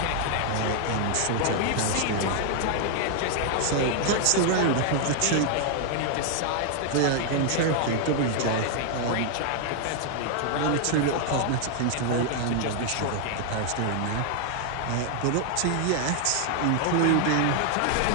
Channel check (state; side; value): different; both; correlation 0.00